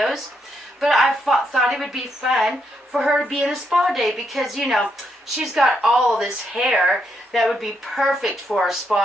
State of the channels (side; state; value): both; normal; correlation 0.78